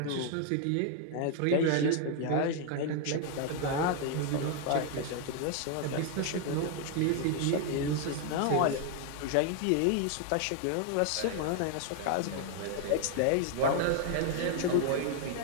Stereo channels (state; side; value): different; both; correlation 0.00